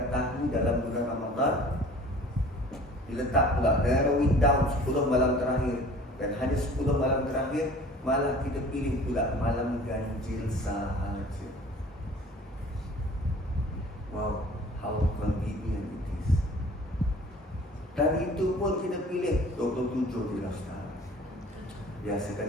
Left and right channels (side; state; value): both; normal; correlation 0.48